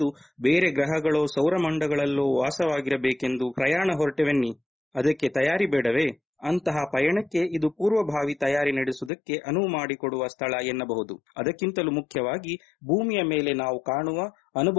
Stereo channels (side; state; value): right; drops out; at 9.1 s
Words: ಬೇರೆ ಗ್ರಹಗಳೋ ಸೌರಮಂಡಗಳಲ್ಲೋ ವಾಸವಾಗಿರಬೇಕೆಂದು ಪ್ರಯಾಣ ಹೊರಟೆವೆನ್ನಿ. ಅದಕ್ಕೆ ತಯಾರಿ ಬೇಡವೇ? ಅಂತಹ ಪಯಣಕ್ಕೆ ಇದು ಪೂರ್ವಭಾವಿ ತಯಾರಿ ನಡೆಸುವುದಕ್ಕೆ ಅನುವು ಮಾಡಿಕೊಡುವ ಸ್ಥಳ ಎನ್ನಬಹುದು. ಅದಕ್ಕಿಂತಲೂ ಮುಖ್ಯವಾಗಿ ಭೂಮಿಯ ಮೇಲೆ ನಾವು ಕಾಣುವ,